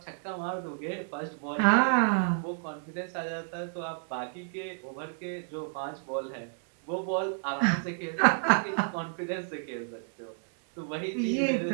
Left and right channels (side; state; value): left; silent; digital silence